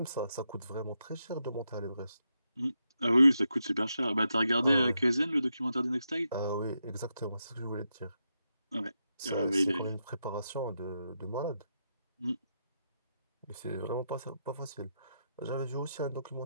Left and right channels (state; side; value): inverted; both; correlation -0.84